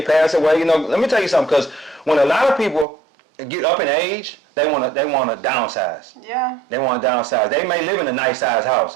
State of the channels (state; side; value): drops out; left; at 2.9 s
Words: pass away. Let me tell you something, because when a lot of people get up in age, they want to downsize. Yeah. They want to downsize. They may live in a nice sized